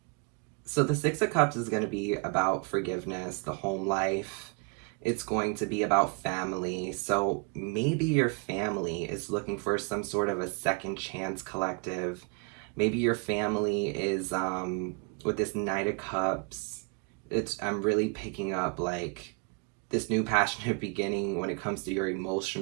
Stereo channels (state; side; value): quieter; left; 33.9 dB